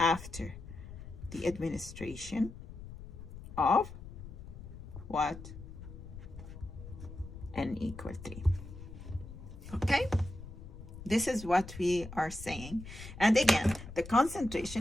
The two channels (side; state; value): left; noise; rumble, 13 dB below the sound